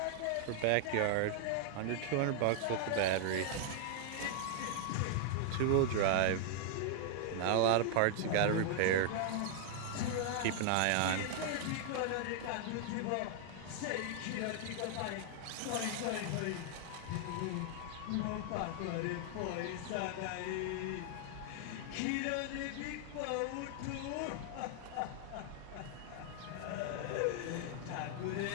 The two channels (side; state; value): both; different; correlation -0.01